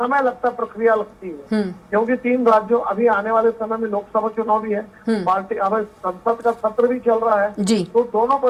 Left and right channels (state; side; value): identical; both; correlation 1.00